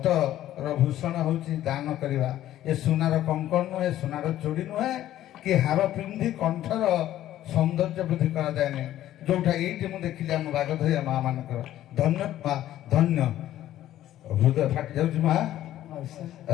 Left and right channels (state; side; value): quieter; right; 13.0 dB